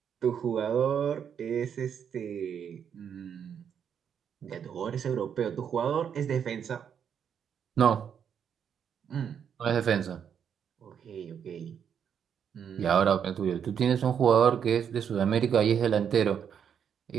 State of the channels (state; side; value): quieter; left; 8.0 dB